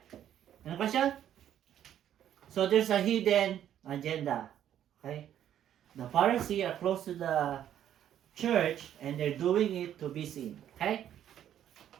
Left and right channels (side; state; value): left; quieter; 10.6 dB